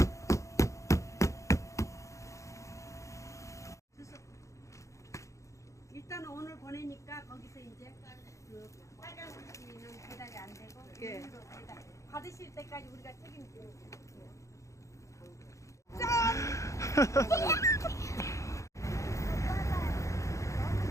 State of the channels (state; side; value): late; right; 0.15 ms